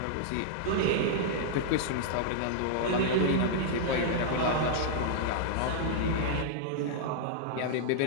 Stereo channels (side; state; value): both; different; correlation -0.01